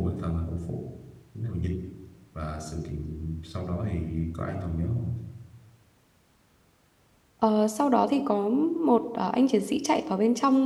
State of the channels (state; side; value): identical; both; correlation 1.00